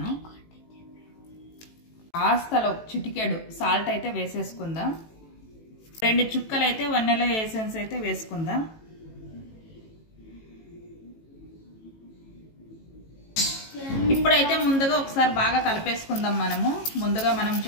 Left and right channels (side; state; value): right; late; 18 ms